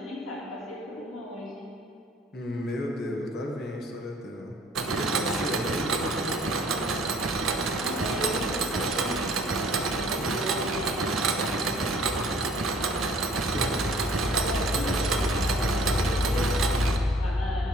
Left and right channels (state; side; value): normal; both; correlation 0.55